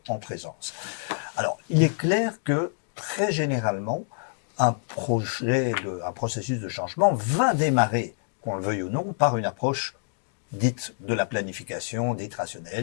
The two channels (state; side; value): silent; right; digital silence